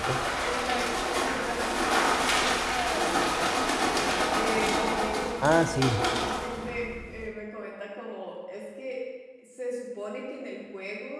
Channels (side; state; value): both; identical; correlation 1.00